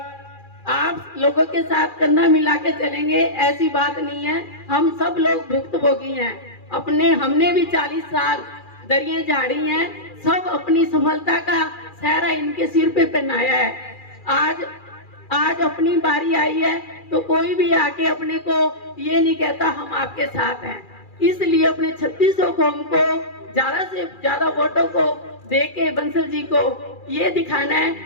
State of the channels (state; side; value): late; right; 2.4 ms